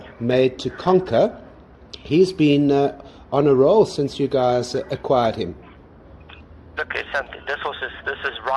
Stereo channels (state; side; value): identical; both; correlation 1.00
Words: Made to Conquer. He's been on a roll since you guys acquired him. Look, this horse is